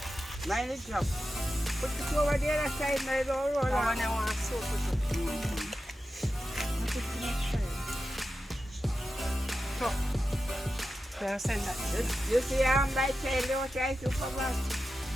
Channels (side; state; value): both; normal; correlation 0.91